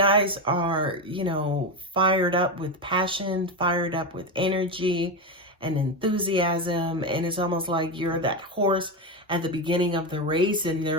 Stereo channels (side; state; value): both; normal; correlation 0.14